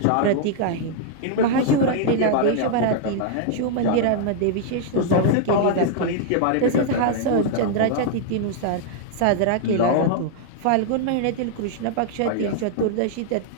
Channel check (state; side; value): different; both; correlation -0.01